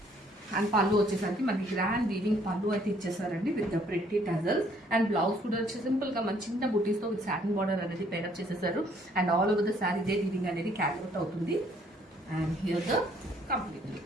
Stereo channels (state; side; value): normal; both; correlation 0.64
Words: అండ్ పళ్ళు వచ్చేసరికి మనకి గ్రాండ్ వీవింగ్ పళ్ళు అయితే ఇచ్చేసారండి with the pretty tassels. And blouse కూడా వచ్చి సింపుల్ గా మన చిన్న బుటీస్తో విత్ సాటిన్ బార్డర్ అనేది పేరప్ చేసేసారు. And all over the sari ఇదే వీవింగ్ అనేది క్యారీ అవుట్ అవుతుంది. And here the complete